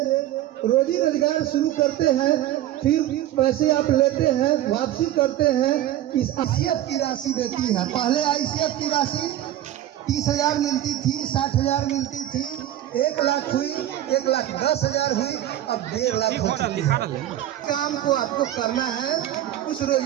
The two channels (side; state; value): left; quieter; 13.0 dB